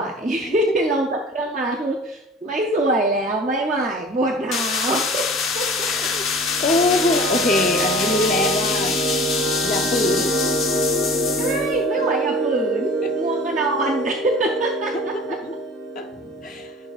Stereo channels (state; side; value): normal; both; correlation 0.42